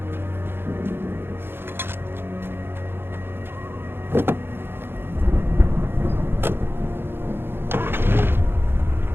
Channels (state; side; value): late; left; 0.11 ms